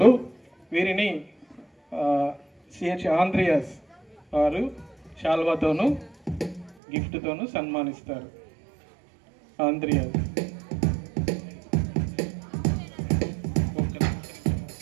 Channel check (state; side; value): drops out; left; at 6.8 s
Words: వీరిని సిహెచ్ ఆంద్రియాస్ వారు శాల్వాతోనూ గిఫ్ట్తోనూ సన్మానిస్తారు. ఆంద్రియాస్